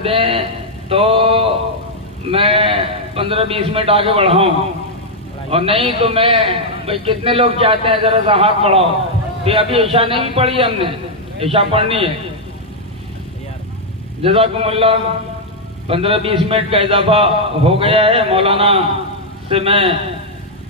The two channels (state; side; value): normal; both; correlation -0.03